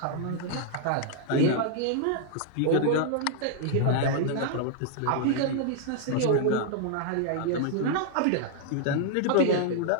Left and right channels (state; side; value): different; both; correlation -0.01